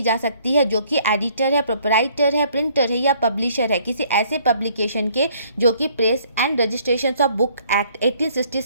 जा सकती है जो कि एडिटर है, प्रोपराइटर है, प्रिंटर है या पब्लिशर है किसी ऐसे पब्लिकेशन के जो कि press and registration of book act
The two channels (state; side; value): inverted; both; correlation -0.62